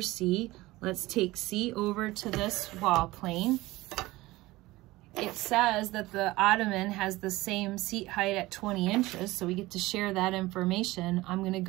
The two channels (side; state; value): left; quieter; 19.1 dB